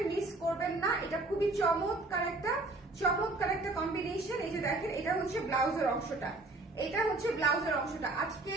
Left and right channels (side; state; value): left; quieter; 3.1 dB